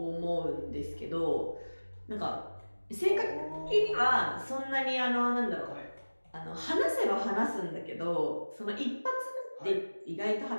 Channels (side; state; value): both; inverted; correlation -1.00